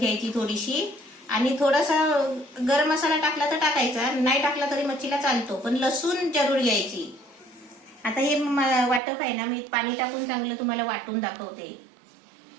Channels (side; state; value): left; drops out; at 9.0 s